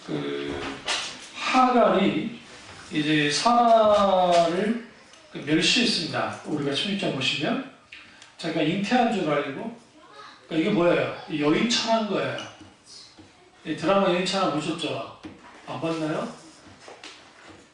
하갈이 이제 사라를 멸시했습니다. 우리가 16장 보시면 자기가 잉태한 줄 알고 이게 뭐예요? 여인천한 거예요. 이 드라마 여인천하 보셨죠? 안 봤나요?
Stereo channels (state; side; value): identical; both; correlation 1.00